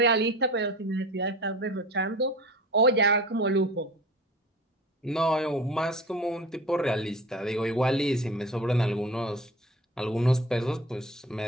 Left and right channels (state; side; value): normal; both; correlation 0.37